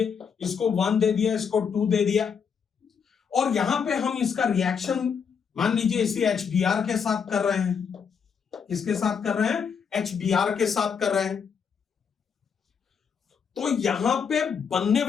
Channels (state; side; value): quieter; right; 6.6 dB